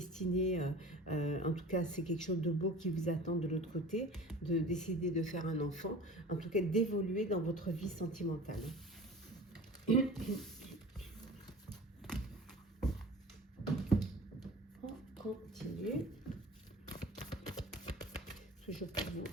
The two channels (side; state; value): both; normal; correlation 0.40